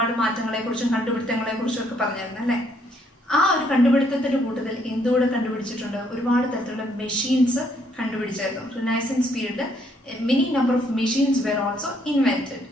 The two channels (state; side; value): normal; both; correlation 0.69